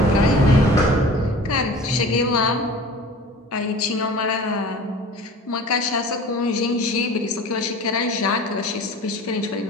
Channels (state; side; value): normal; both; correlation 0.40